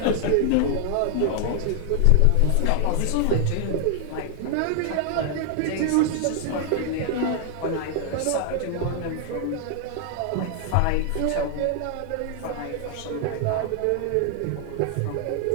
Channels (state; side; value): different; both; correlation 0.00